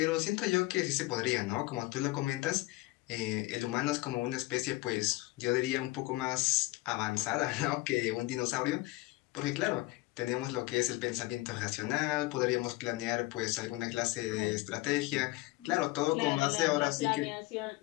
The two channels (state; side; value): quieter; right; 20.8 dB